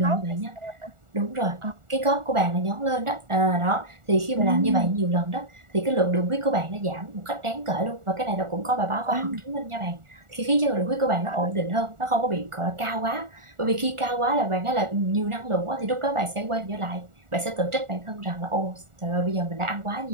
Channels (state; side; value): late; left; 1.4 ms